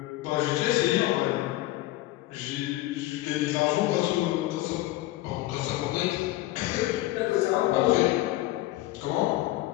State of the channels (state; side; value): quieter; right; 17.1 dB